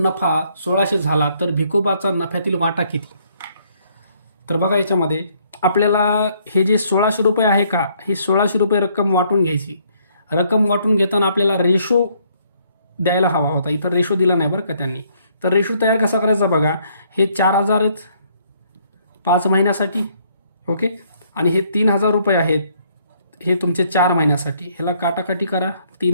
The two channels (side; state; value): both; inverted; correlation -0.67